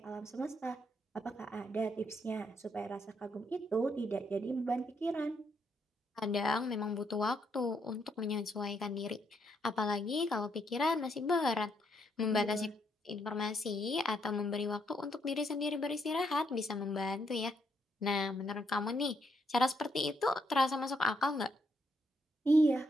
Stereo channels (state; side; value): normal; both; correlation 0.75